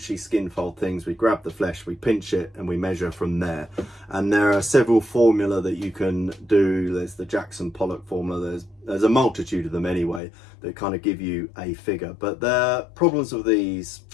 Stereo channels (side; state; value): right; drops out; at 10.2 s